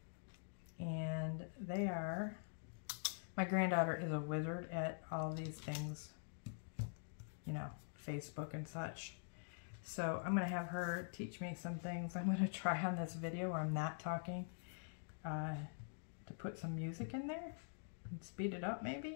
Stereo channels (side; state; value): right; silent; digital silence